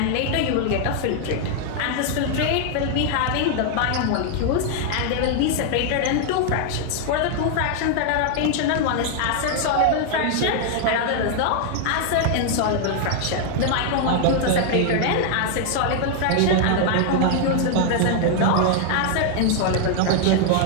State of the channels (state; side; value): different; both; correlation 0.00